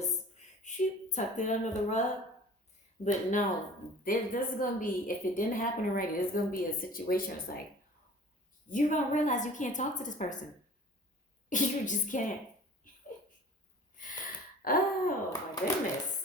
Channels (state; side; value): normal; both; correlation 0.45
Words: tucked it under the rug. But no, this is going to be, if it didn't happen already, there's going to be a situation where it's like, you're going to realize you can't talk to this person. You just can't. Oh, my goodness.